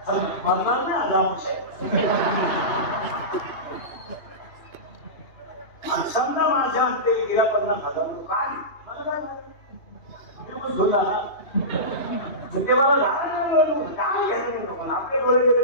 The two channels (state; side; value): late; right; 2.8 ms